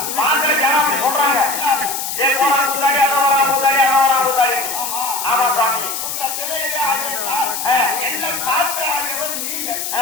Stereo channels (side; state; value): left; noise; hiss, 4 dB below the sound